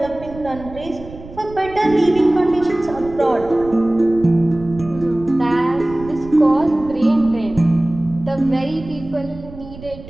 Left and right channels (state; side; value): noise; right; rumble, 16 dB below the sound